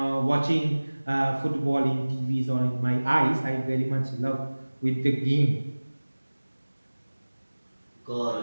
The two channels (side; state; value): both; inverted; correlation -1.00